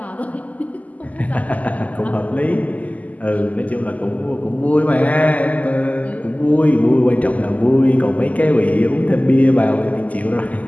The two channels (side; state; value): right; late; 0.075 ms